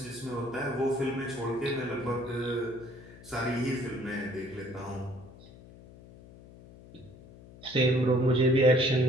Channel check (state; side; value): noise; left; hum, 20 dB below the sound